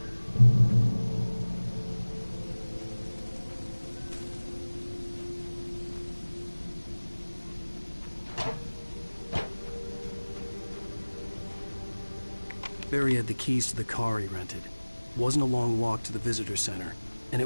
Barry had the keys to the car he rented. It wasn't a long walk to the visitor center, and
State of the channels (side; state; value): both; inverted; correlation -1.00